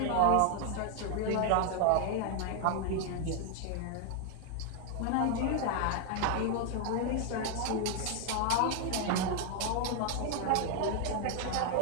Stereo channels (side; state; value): both; different; correlation 0.00